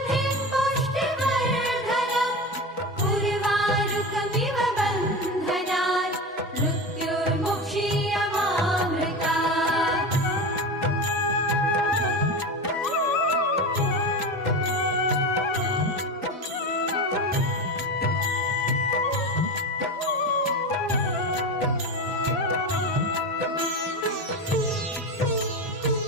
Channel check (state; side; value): normal; both; correlation 0.24